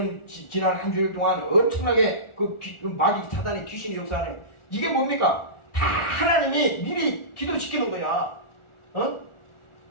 지난 한 주일 동안 엄청나게 그 마귀 사단의 귀신이 역사하네. 이게 뭡니까? 다 하나님이 미리 기도시키는 거야.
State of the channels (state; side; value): late; right; 1.4 ms